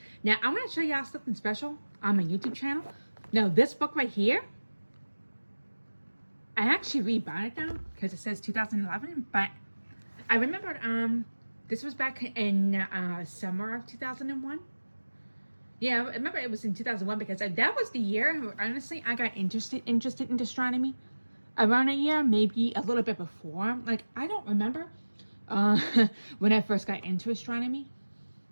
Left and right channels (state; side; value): inverted; both; correlation -1.00